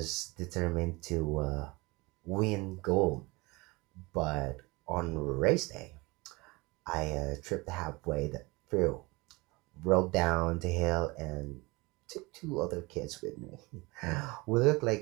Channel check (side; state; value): left; quieter; 24.4 dB